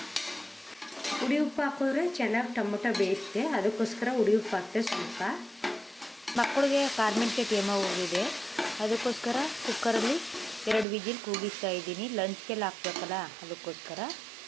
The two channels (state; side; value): drops out; left; at 10.9 s